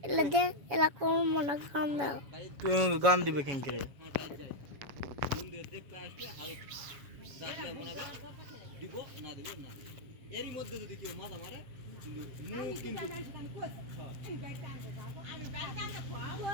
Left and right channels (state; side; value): late; left; 7.2 ms